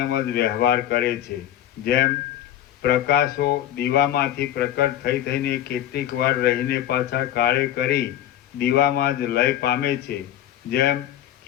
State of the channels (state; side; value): quieter; right; 11.7 dB